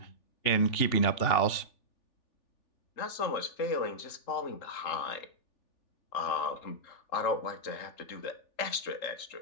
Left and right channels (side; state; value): right; late; 3.4 ms